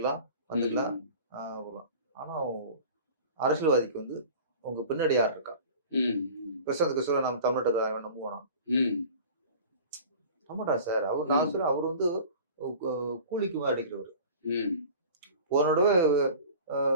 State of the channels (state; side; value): inverted; both; correlation -0.41